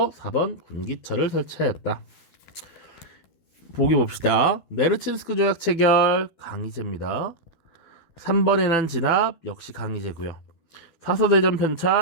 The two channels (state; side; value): late; right; 12 ms